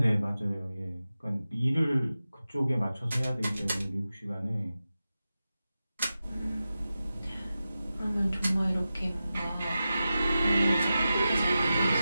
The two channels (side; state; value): both; inverted; correlation -0.93